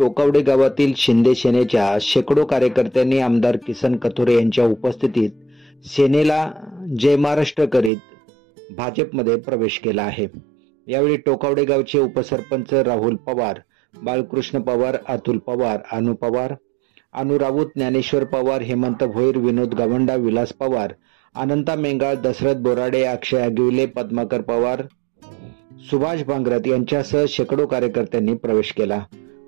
गावातील शिंदे सेनेच्या शेकडो कार्यकर्त्यांनी आमदार किसन कथोरे यांच्या उपस्थितीत सेनेला जय महाराष्ट्र करीत भाजपमध्ये प्रवेश केला आहे। यावेळी टोकावडे गावचे उपसरपंच राहुल पवार, बाळकृष्ण पवार, अतुल पवार, अनु पवार, अनु राऊत, ज्ञानेश्वर पवार, हेमंत भोईर, विनोद गावंडा, विलास पवार, अनंता मेंगाळ, दशरथ बोराडे, अक्षय अगिवले, पद्माकर पवार, सुभाष भांगरत यांच्यासह शेकडो कार्यकर्त्यांनी प्रवेश केला।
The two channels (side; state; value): left; drops out; at 7.9 s